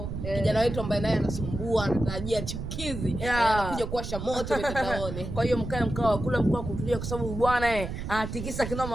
kijana wetu ambaye naye anasumbua, anatarajia chukizi anakuja kuwasha moto mitandaoni. Kwa hiyo mkae mkao kula mkao kutulia, kwa sababu bwana anatikisa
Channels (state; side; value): noise; right; rumble, 6 dB below the sound